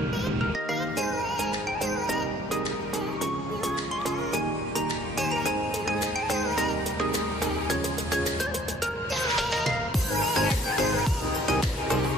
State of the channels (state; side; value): normal; both; correlation 0.59